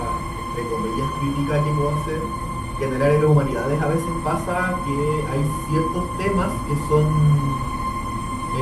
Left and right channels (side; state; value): both; identical; correlation 1.00